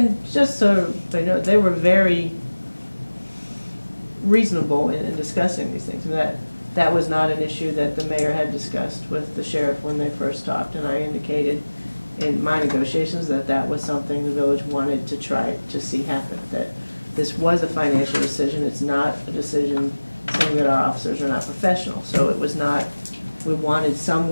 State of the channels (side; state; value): both; inverted; correlation -1.00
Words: just so they know, they were very reasonable in discussing these things. That was not an issue that the mayor had discussed with the sheriff when they first talked, and I indicated in my negotiations that that was something the village wanted to try to see happen, that this was a financial decision, it's not a decision saying that our officers are not professional. So it was not, we wanted